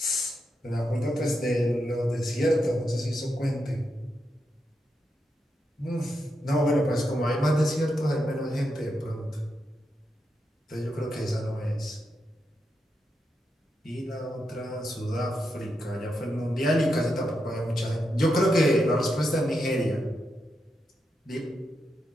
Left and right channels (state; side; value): normal; both; correlation 0.84